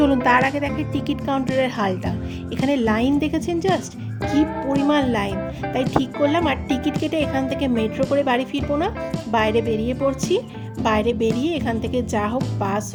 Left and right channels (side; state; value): both; identical; correlation 1.00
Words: তার আগে দেখে টিকিট কাউন্টারের হালটা। এখানে লাইন দেখেছেন জাস্ট কি পরিমাণ লাইন। তাই ঠিক করলাম আর টিকিট কেটে এখান থেকে মেট্রো করে বাড়ি ফিরবো না, বাইরে বেরিয়ে পড়ছি। বাইরে বেরিয়ে এখান থেকে যা হোক, বাস